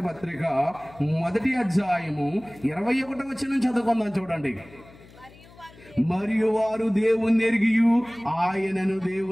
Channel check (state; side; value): noise; left; hum, 23 dB below the sound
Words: పత్రిక 1వ అధ్యాయము 21వ వచనం చదువుకుందాం, చూడండి. మరియు వారు దేవుని ఎరిగియు ఆయనను